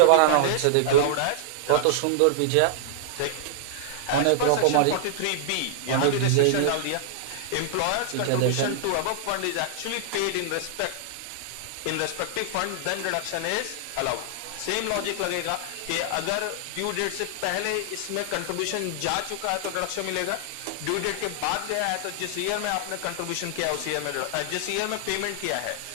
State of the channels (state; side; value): different; both; correlation -0.01